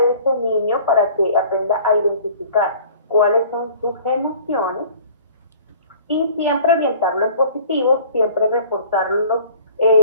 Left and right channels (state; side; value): inverted; both; correlation -0.48